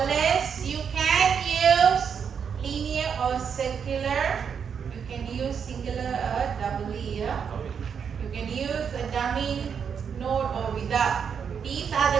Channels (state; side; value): quieter; left; 7.0 dB